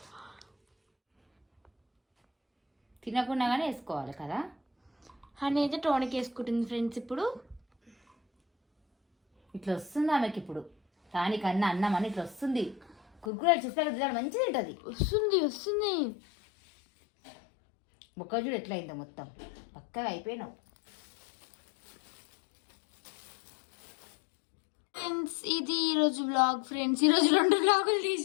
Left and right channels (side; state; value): right; drops out; at 13.3 s